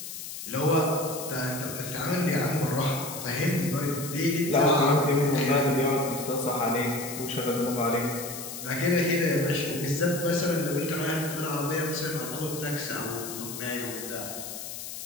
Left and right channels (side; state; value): left; noise; hiss, 9 dB below the sound